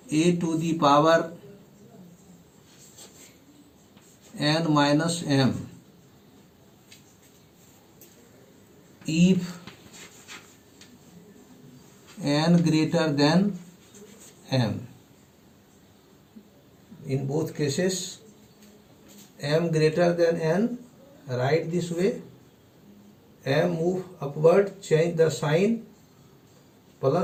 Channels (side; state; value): both; identical; correlation 1.00